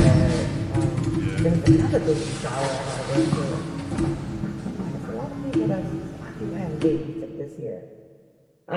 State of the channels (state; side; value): identical; both; correlation 1.00